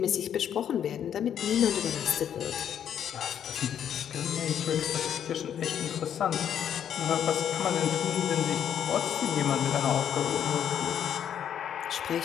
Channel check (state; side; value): quieter; right; 9.2 dB